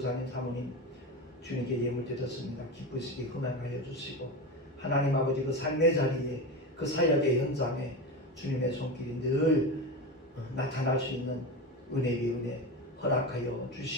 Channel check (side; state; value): both; normal; correlation 0.22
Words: 사모님 주님께 예물 드렸습니다. 기쁘시게 흥행하여 주시고 하나님 아버지 그 삶의 자리에 그 사역의 현장에 주님의 손길이 늘 나타날 수 있는 은혜 위에 은혜 허락하여